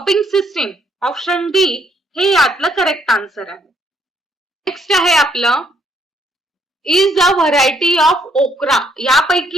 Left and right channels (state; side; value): normal; both; correlation 0.70